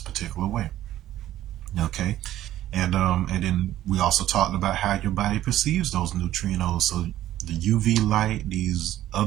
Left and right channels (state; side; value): quieter; left; 13.4 dB